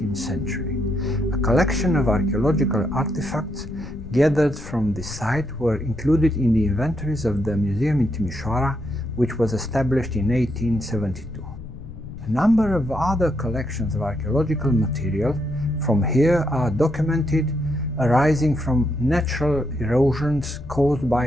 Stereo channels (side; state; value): left; noise; rumble, 13 dB below the sound